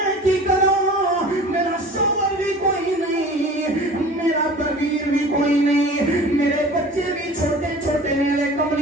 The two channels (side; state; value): both; normal; correlation 0.42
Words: کی کراں میرا شوہر بھی کوئی نہیں میرا ویر بھی کوئی نہیں میرے بچے بھی چھوٹے چھوٹے میرے